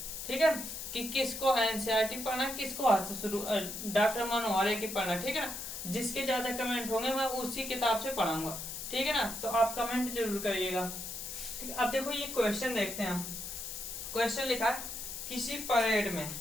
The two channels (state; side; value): noise; left; hiss, 7 dB below the sound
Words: ठीक है, कि किसको एनसीईआरटी पढ़ना, किसको आज से शुरू डॉक्टर मनोहर की पढ़ना, ठीक है ना। जिसके ज्यादा कमेंट होंगे मैं उसी किताब से पढ़ाऊंगा, ठीक है ना। तो आप कमेंट जरूर करिएगा, ठीक है। अब देखो ये क्वेश्चन देखते हैं हम। क्वेश्चन लिखा है किसी परेड में,